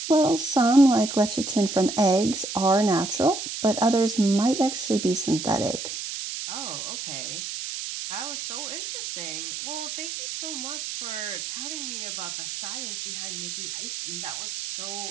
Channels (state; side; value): noise; right; hiss, 6 dB below the sound